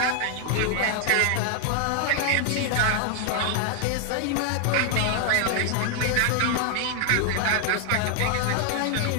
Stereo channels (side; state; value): both; different; correlation 0.00